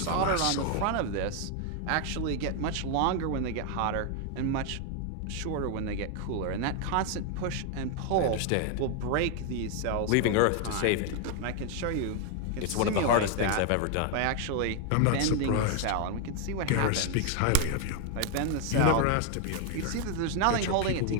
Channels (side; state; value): both; different; correlation 0.01